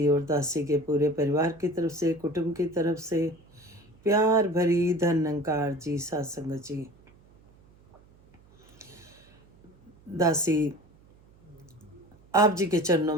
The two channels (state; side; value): noise; right; hum, 28 dB below the sound